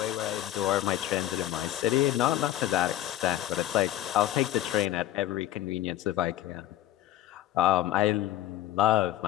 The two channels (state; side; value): quieter; right; 13.6 dB